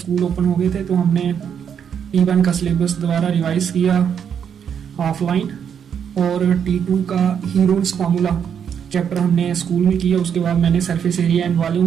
ओपन हो गए थे तो हमने T1 का सिलेबस दोबारा रिवाइज किया ऑफलाइन, और T2 का हीरोज फार्मूला चैप्टर हमने स्कूल में किया। उसके बाद मैंने सरफेस एरिया एंड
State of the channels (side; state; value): left; quieter; 7.9 dB